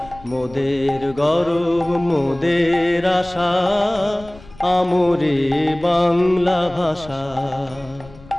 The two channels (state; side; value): noise; left; rumble, 21 dB below the sound